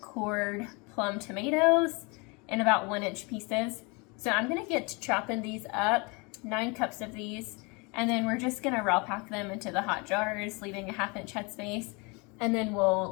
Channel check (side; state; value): right; quieter; 29.3 dB